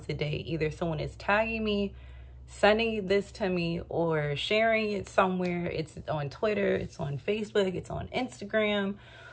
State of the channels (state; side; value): identical; both; correlation 1.00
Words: a day, either someone is tagging me, sending this to me, or sharing it somewhere. It's on Twitter, it's on Facebook, it's on Instagram,